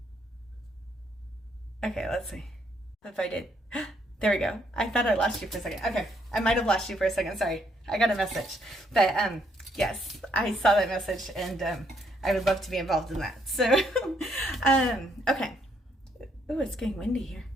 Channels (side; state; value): both; normal; correlation 0.71